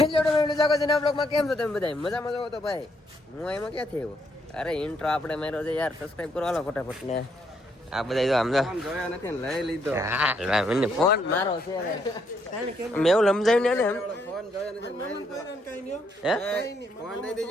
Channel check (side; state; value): both; normal; correlation 0.73